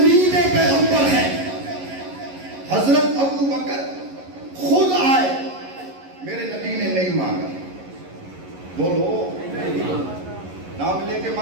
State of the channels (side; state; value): left; late; 11 ms